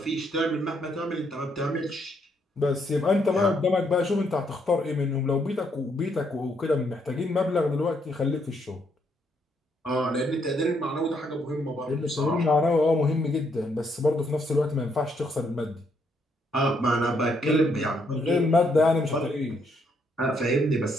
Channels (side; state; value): both; normal; correlation 0.73